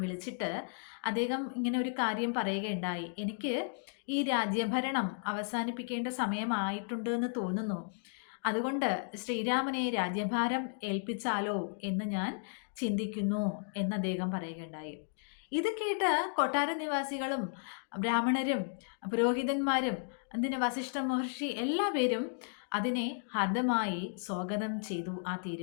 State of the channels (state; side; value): silent; right; digital silence